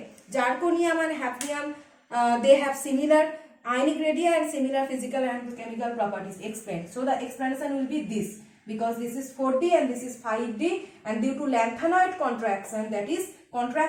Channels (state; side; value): identical; both; correlation 1.00